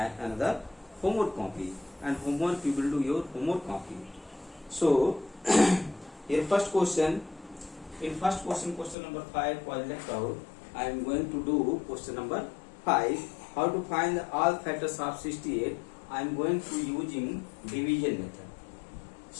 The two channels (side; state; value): right; drops out; at 9.0 s